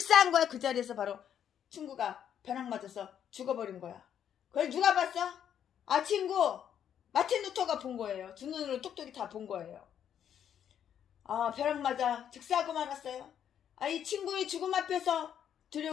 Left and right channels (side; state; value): right; quieter; 9.2 dB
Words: 거야. 그 자리에서 바로 친구가 벼락 맞아서 죽어버린 거야. 그걸 누가 봤어? 친구 마틴 루터가 본 거예요. 두 눈으로 똑똑히 다 본 거예요. 벼락 맞아 즉사하고 말았어요. 이 친구의 죽음 앞에서